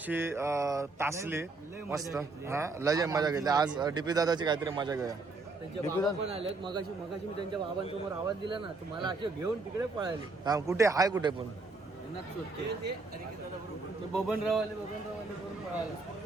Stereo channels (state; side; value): quieter; left; 3.6 dB